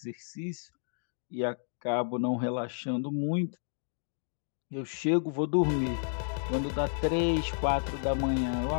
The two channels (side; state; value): right; silent; digital silence